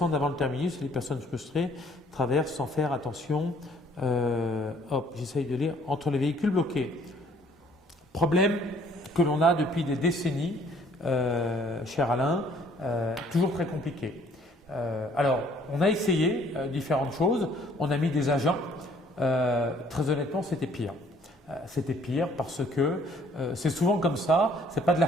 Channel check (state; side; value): normal; both; correlation 0.60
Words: avant le terminus et les personnes frustrées traversent sans faire attention. J'essaye de lire. Entre les véhicules bloqués. Problème que l'on a depuis des décennies, cher Alain, toujours très compliqué. Alors, on a essayé différentes choses, on a mis des agents, très honnêtement, c'était pire. C'était pire parce que c'est souvent comme ça, c'est pas de la